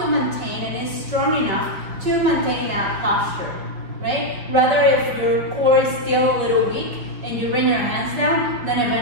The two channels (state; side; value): late; left; 5.5 ms